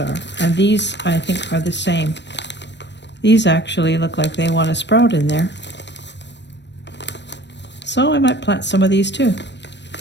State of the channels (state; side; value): late; right; 0.51 ms